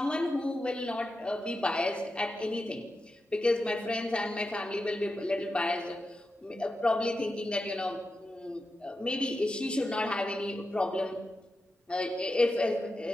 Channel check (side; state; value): both; normal; correlation 0.89